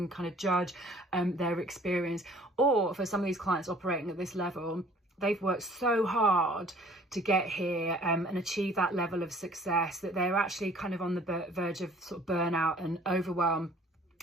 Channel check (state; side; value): normal; both; correlation 0.54